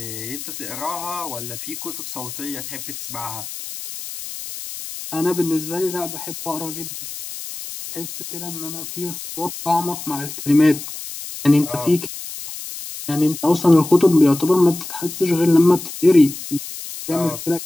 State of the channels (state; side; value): noise; left; hiss, 10 dB below the sound